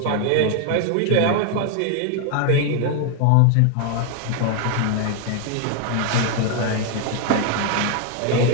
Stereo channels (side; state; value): both; different; correlation 0.00